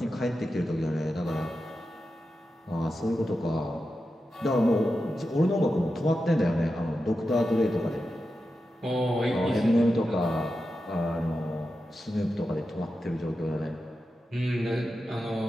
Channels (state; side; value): normal; both; correlation 0.90